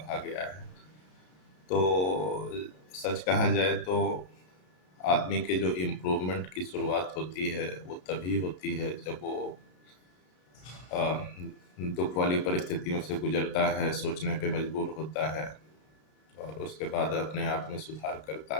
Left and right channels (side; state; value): right; late; 33 ms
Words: गया है। तो सच कहा जाए तो आदमी के जो इम्प्रूवमेंट की शुरुआत होती है वो तभी होती है जब वो अ, दुख वाली परिस्थितियों से गुजरता है, सोचने पे मजबूर होता है और उसके बाद अपने आप में सुधार